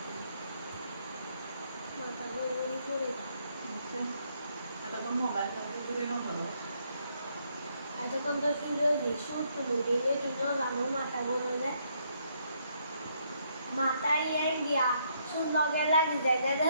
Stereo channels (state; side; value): inverted; both; correlation -0.72